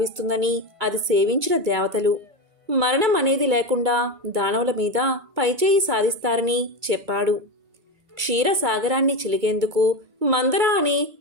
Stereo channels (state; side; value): late; left; 2.2 ms